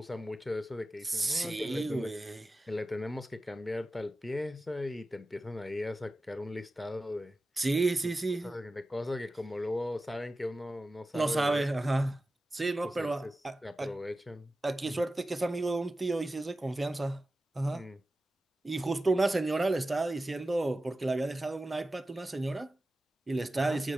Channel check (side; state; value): both; normal; correlation 0.94